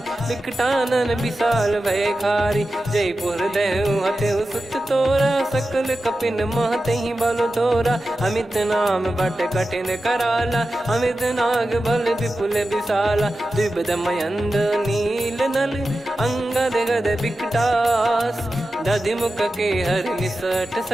विकटानन विशाल भयखारी, जयपुर देहु हतेउ सुत तोरा, सकल कपिन महतहि बल तोरा, अमित नाम बट कठिन कराला, अमित नाग बल विपुल विशाला, द्विविध मयंद नील नल, अंगद गद विकटास, दधि मुख के हर निसठ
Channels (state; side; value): normal; both; correlation 0.93